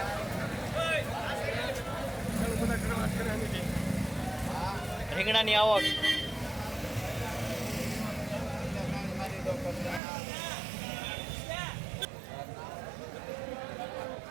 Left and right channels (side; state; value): left; drops out; at 10.0 s